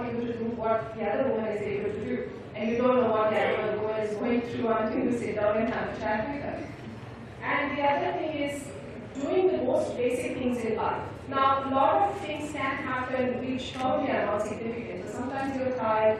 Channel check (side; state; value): both; identical; correlation 1.00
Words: able to do what the other woman is able to do? And you don't know what the other woman is going through until you sit down and have a chat with her. And the other thing is doing the most basic things in life. Now, a lot of things can happen which probably are not significant. So sometimes you're tired,